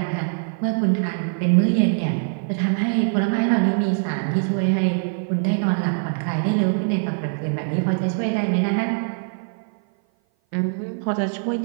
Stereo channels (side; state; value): left; silent; 57 dB below the other